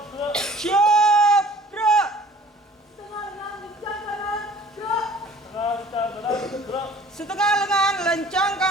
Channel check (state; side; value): normal; both; correlation 0.50